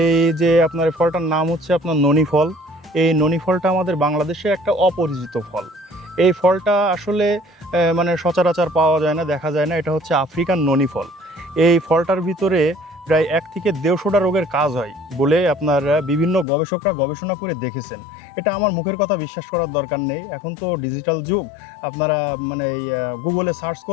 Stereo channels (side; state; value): right; drops out; at 16.4 s